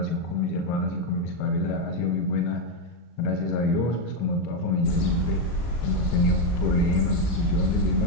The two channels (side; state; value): right; late; 36 ms